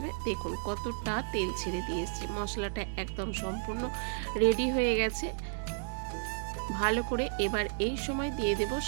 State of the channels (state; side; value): silent; left; 56 dB below the other